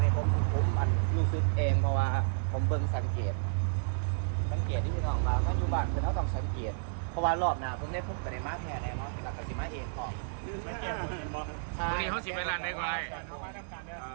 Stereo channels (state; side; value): silent; left; digital silence